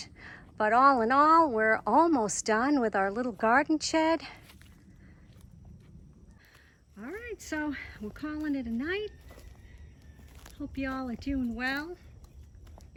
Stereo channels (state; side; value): identical; both; correlation 1.00